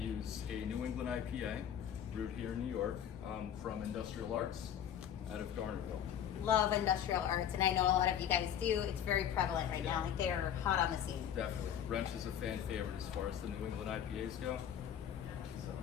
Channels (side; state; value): right; quieter; 9.5 dB